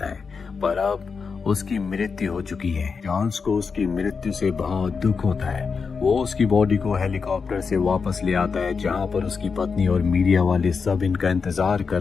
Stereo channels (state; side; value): quieter; right; 5.3 dB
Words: है, पर अब उसकी मृत्यु हो चुकी है। चार्ल्स को उसकी मृत्यु से बहुत दुख होता है। वो उसकी बॉडी को हेलीकॉप्टर से वापस ले आता है जहाँ पर उसकी पत्नी और मीडिया वाले सब इनका इंतजार कर